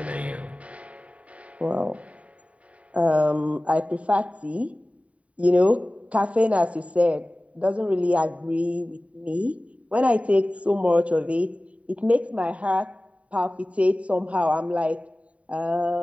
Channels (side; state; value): left; late; 0.066 ms